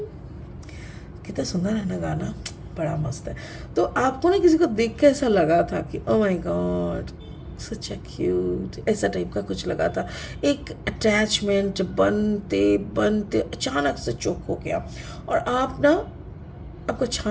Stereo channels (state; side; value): identical; both; correlation 1.00